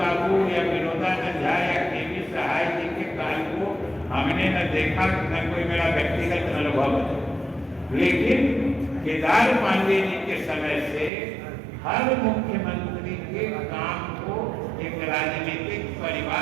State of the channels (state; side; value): drops out; left; at 11.1 s